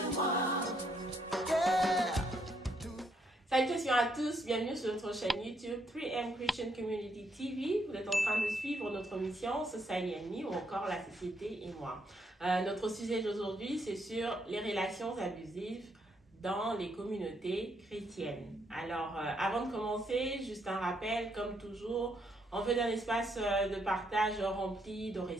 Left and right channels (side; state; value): both; normal; correlation 0.74